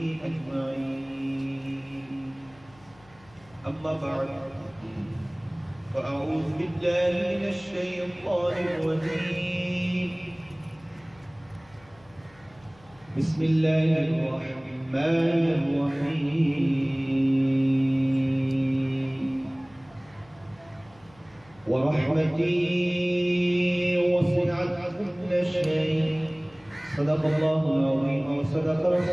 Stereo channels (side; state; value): left; noise; hum, 27 dB below the sound